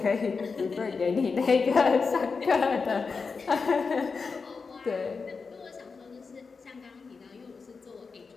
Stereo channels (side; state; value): right; quieter; 4.8 dB